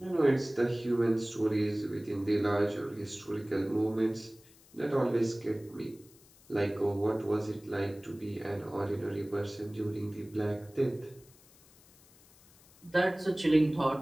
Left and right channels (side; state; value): left; noise; hiss, 26 dB below the sound